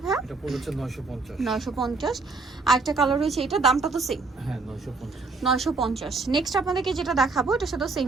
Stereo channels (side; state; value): left; quieter; 4.0 dB